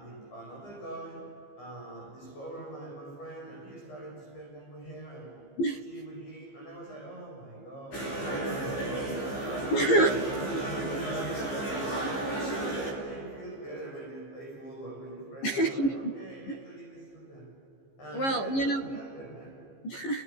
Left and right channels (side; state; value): right; late; 15 ms